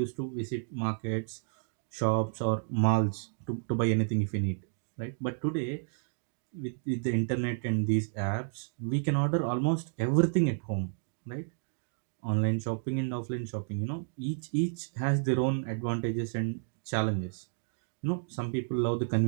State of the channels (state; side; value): silent; left; digital silence